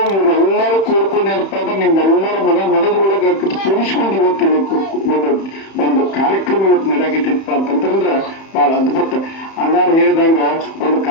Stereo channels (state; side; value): late; right; 31 ms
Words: ಇವರೆಲ್ಲರೂ ಕೂಡ್ಕೊಂಡು ಏನಪ್ಪಾ ಅಂದ್ರೆ ನಿಮ್ಮೆಲ್ಲರ ಮನದೊಳಗೆ ಕೂಡಿಸ್ಕೊಂಡು ಇವತ್ತಿಲ್ಲ ಒಂದು ಕಾರ್ಯಕ್ರಮ ಇವತ್ತು ನಡೆಯಾಗಿತ್ತಪ್ಪ ಅಂತಂದ್ರೆ ಬಹಳ ಅದ್ಭುತ. ಅಣ್ಣಾರು ಹೇಳಿದಂಗ ಒಂದು